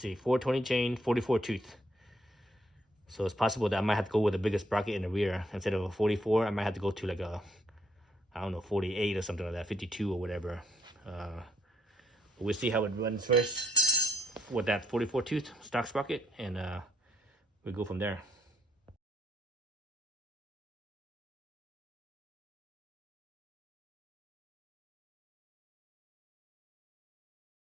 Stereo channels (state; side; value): normal; both; correlation 0.70